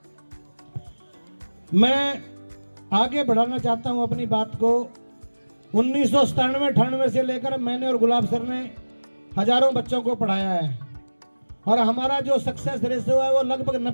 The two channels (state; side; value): inverted; both; correlation -1.00